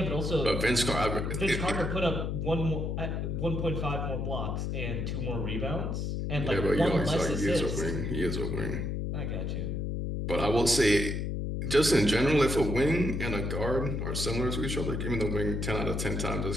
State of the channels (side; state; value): left; noise; hum, 2 dB below the sound